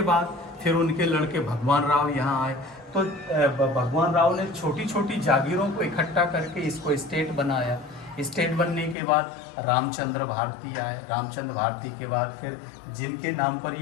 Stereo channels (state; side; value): drops out; right; at 9.0 s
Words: बाद फिर उनके लड़के भगवान राव यहाँ आए। तो भगवान राव ने छोटी छोटी जागीरों को इकट्ठा करके इसको स्टेट बनाया। स्टेट बनने के बाद रामचंद्र भारती आए। रामचंद्र भारती के बाद फिर जिनके नाम पर